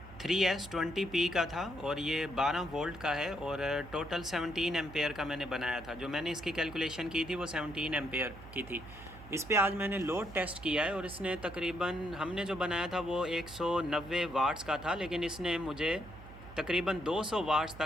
3S20P का था और ये 12 वोल्ट का है और टोटल 17 एम्पेयर का मैंने बनाया था। जो मैंने इसकी कैलकुलेशन की थी वो 17 एम्पेयर की थी। इस पे आज मैंने लोड टेस्ट किया है और इसने तकरीबन, हमने जो बनाया था वो 190 वाट्स का था, लेकिन इसने मुझे तकरीबन 200 वाट्स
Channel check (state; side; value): noise; right; hum, 16 dB below the sound